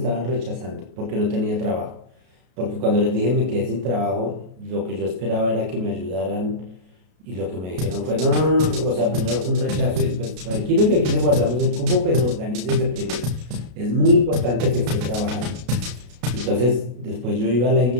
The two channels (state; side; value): late; left; 33 ms